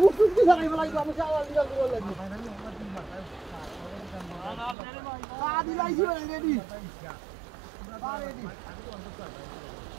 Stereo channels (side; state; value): left; drops out; at 4.8 s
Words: ফুটফুট কি ধরাইব লাগবে আমি চাওয়াল দিবা করব লাগবে আদি লাইছি রেডি রেডি